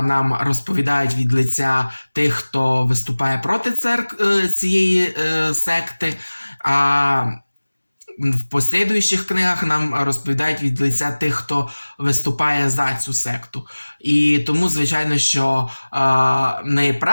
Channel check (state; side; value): inverted; both; correlation -1.00